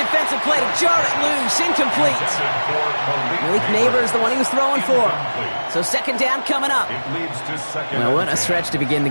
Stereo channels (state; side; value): inverted; both; correlation -1.00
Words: play to jar it loose. Incomplete. Malik Neighbors, the one he was throwing for. So second down coming up. Well, what a stretch to begin the